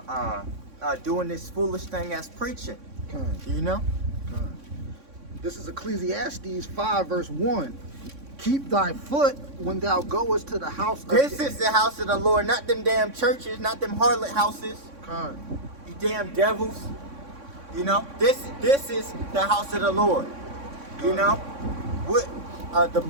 doing this foolish thing as preaching. You know? This is Ecclesiastes 5 verse 1. Keep thy foot when thou goest to the house of... This is the house of the Lord, not them damn churches, not them harlot houses. Con. You damn devils. You know? This is the house of the Lord. You know?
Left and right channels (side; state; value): left; late; 3.6 ms